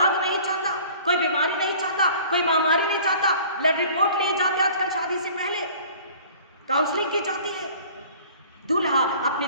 नहीं चाहता, कोई बीमारी नहीं चाहता, कोई महामारी नहीं चाहता। ब्लड रिपोर्ट लिए जाते आजकल शादी से पहले, काउंसलिंग की जाती है। दूल्हा अपनी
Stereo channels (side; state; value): both; inverted; correlation -0.48